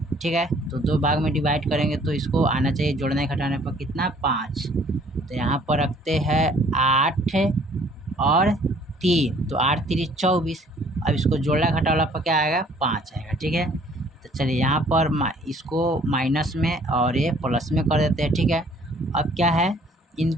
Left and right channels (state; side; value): normal; both; correlation 0.58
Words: ठीक है। तो 2 भाग में डिवाइड करेंगे तो इसको आना चाहिए जोड़ने घटाने पर कितना 5। तो यहाँ पर रखते हैं 8 और 3, तो 8 3 24। अब इसको जोड़ना घटाना पर क्या आएगा 5 आएगा, ठीक है। तो चलिए यहाँ पर इसको माइनस में और ये प्लस में कर देते हैं, ठीक है। अब क्या है